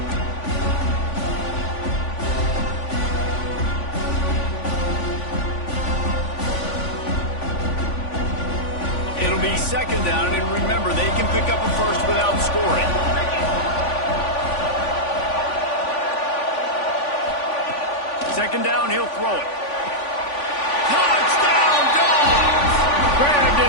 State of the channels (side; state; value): right; late; 3.5 ms